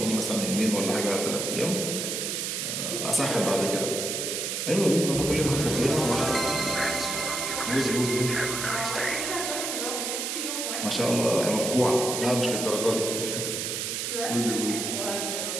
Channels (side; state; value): right; noise; hiss, 2 dB below the sound